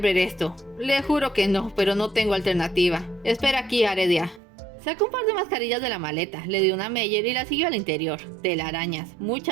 ver esto». «Le juro que no, pero no tengo alternativa. Espera aquí, Aredia». Sacó un par de mascarillas de la maleta, le dio una a Meyer y la siguió al interior. Telarañas,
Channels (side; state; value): left; drops out; at 4.4 s